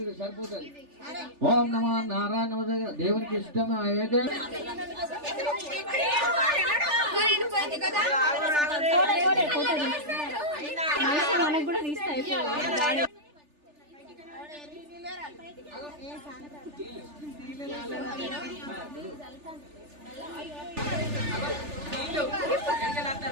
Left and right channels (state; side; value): late; left; 3.4 ms